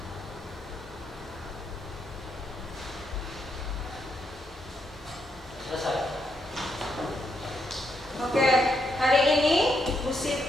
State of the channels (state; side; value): normal; both; correlation 0.79